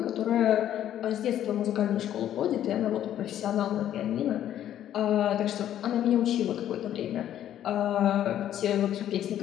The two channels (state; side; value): quieter; right; 11.2 dB